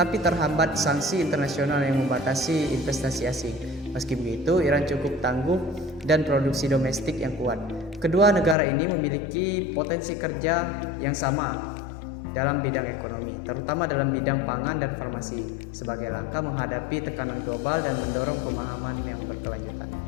terhambat sanksi internasional yang membatasi investasi asing. Meski begitu, Iran cukup tangguh dan produksi domestik yang kuat. Kedua negara ini memiliki potensi kerja yang sama dalam bidang ekonomi, terutama dalam bidang pangan dan farmasi, sebagai langkah menghadapi tekanan global dan mendorong pemahaman yang berkelanjutan.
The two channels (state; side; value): drops out; right; at 8.6 s